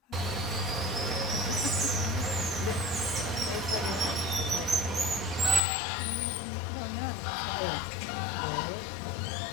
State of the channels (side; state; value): right; drops out; at 5.6 s